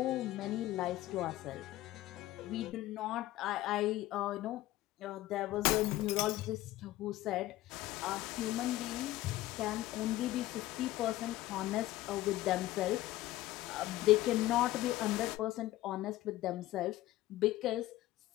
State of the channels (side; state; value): right; quieter; 16.1 dB